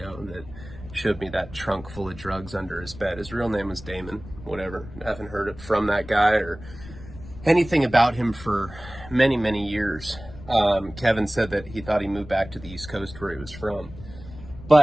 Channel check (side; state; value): left; noise; rumble, 16 dB below the sound